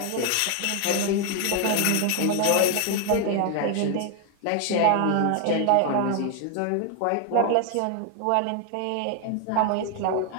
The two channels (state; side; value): different; both; correlation 0.01